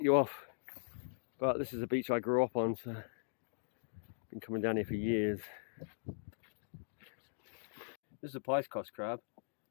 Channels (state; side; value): silent; right; digital silence